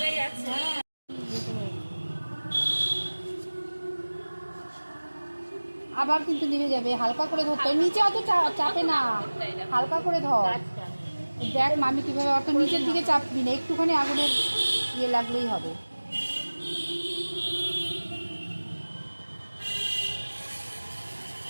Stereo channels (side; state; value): both; inverted; correlation -1.00